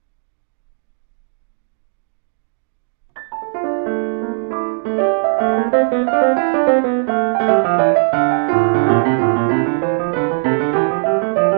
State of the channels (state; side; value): silent; left; digital silence